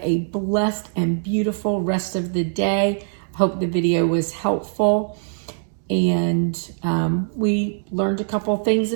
a blessed and beautiful rest of the day. I hope the video was helpful. And we learned a couple things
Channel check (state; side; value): silent; left; digital silence